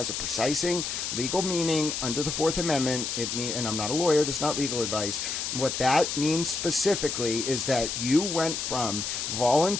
a precising legal meaning under the Fourth Amendment. And I'm not a lawyer, this is not legal advice. What that means specifically is that you went from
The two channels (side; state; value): left; noise; hiss, 3 dB below the sound